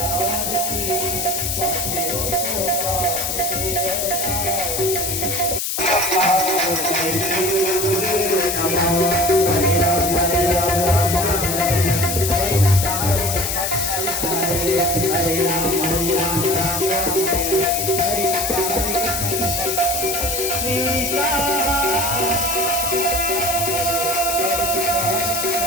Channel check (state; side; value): noise; left; hiss, 1 dB below the sound